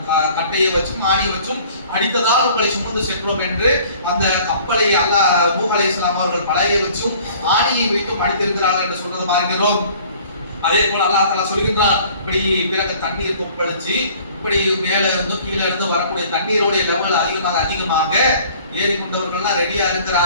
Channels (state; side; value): inverted; both; correlation -0.52